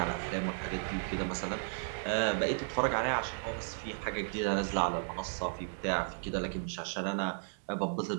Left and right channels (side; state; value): left; silent; digital silence